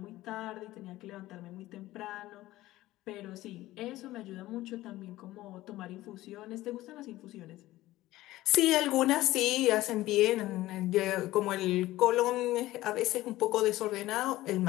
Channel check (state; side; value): quieter; right; 16.6 dB